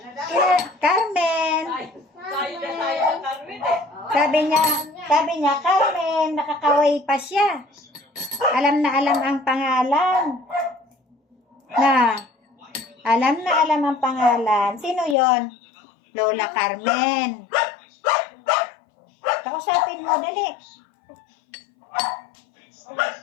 Carmen! Sabi niya, Carmen, nakakaway pa siya. Alam na alam ang pangalan. Alam na alam ang pangalan. Sino yon? Lola Carmen. Kausapin mo, dali.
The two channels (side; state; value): right; drops out; at 15.2 s